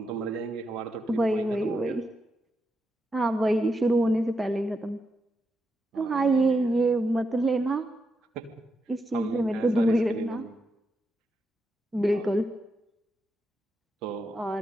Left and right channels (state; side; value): normal; both; correlation 0.84